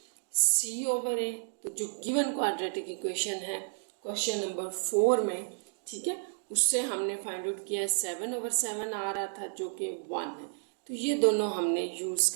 c/a। तो जो गिवन क्वाड्रेटिक इक्वेशन है क्वेश्चन नंबर 4 में, ठीक है, उससे हमने फाइंड आउट किया है 7/7 आ रहा था जो कि 1 है। तो ये दोनों हमने यूज़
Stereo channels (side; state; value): left; silent; digital silence